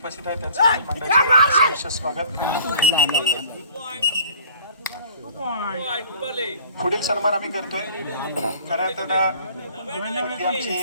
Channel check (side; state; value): both; inverted; correlation -0.51